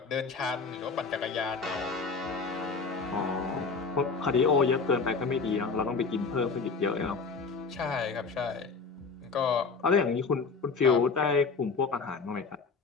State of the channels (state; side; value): quieter; right; 4.7 dB